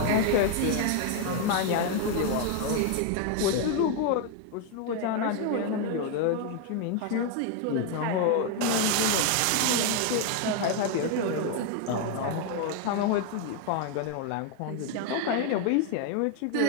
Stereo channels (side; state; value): both; different; correlation 0.01